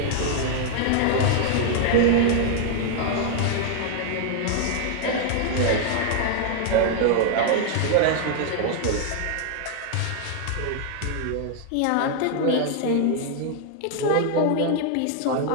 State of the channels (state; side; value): different; both; correlation 0.00